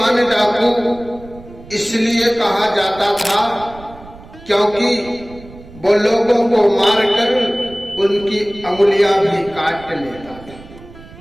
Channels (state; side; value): noise; right; rumble, 19 dB below the sound